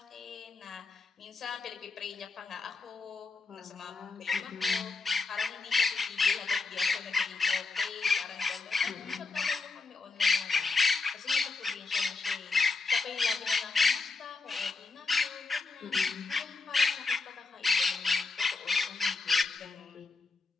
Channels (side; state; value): right; quieter; 4.2 dB